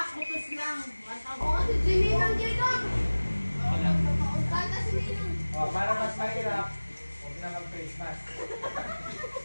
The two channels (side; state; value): both; inverted; correlation -1.00